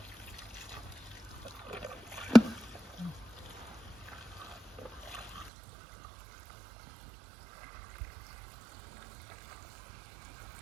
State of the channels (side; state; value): left; drops out; at 5.5 s